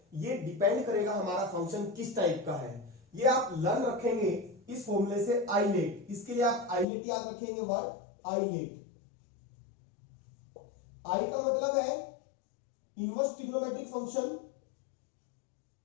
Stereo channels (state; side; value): drops out; right; at 6.9 s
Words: ये डिपेंड करेगा हमारा फंक्शन किस टाइप का है। ये आप लर्न रखेंगे इस फॉर्मूले से, आइलेट। इसके लिए आप आइलेट याद रखेंगे, वर्ड आइलेट। आई का मतलब है इनवर्स ट्रिग्नोमेट्रिक फंक्शन,